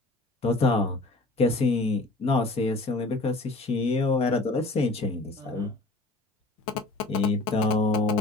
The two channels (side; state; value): right; quieter; 3.0 dB